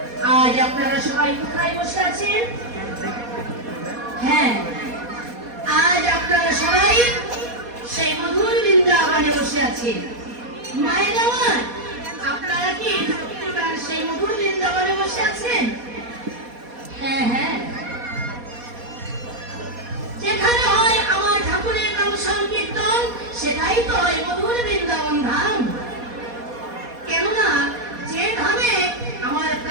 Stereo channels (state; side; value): late; left; 4.2 ms